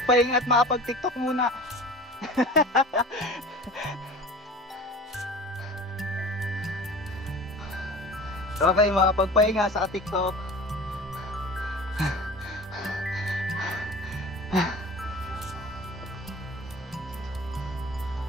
at makapag-tiktok muna. Okay, makapagpahinga sa tiktok.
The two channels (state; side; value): normal; both; correlation 0.39